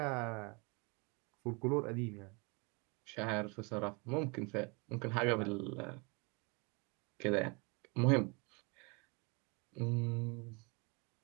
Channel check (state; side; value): quieter; left; 30.6 dB